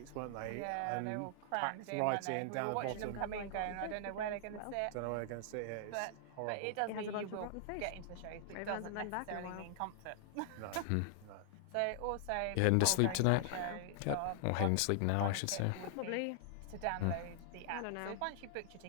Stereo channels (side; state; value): both; different; correlation 0.00